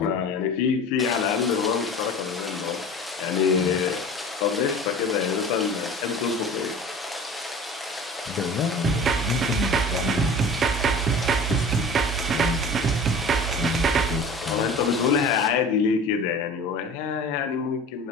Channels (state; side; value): normal; both; correlation 0.39